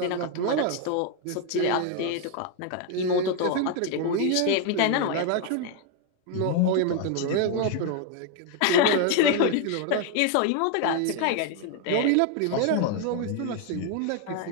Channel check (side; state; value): both; different; correlation 0.00